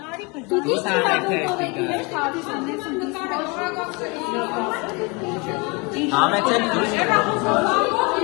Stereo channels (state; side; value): quieter; right; 28.8 dB